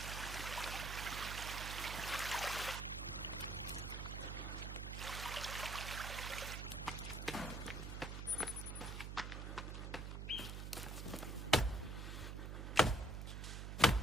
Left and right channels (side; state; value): right; noise; hum, 5 dB below the sound